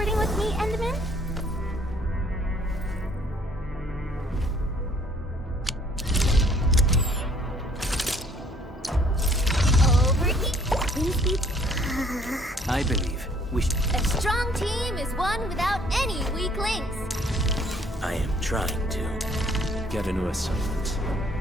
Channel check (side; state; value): both; normal; correlation 0.60